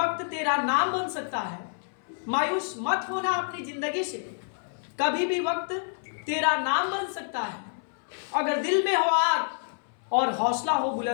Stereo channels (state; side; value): silent; right; 59 dB below the other